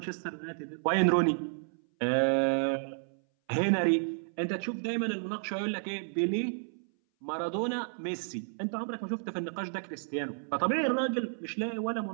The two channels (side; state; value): left; silent; 57 dB below the other